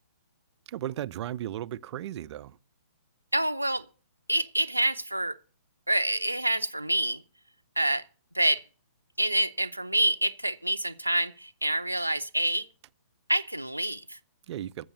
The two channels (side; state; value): both; inverted; correlation -0.91